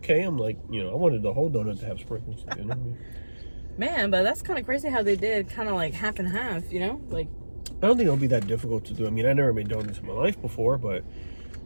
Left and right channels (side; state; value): both; inverted; correlation -1.00